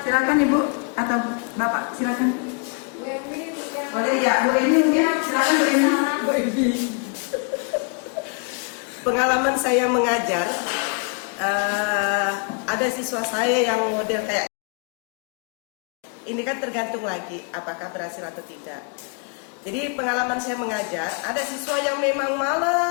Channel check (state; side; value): quieter; right; 38.4 dB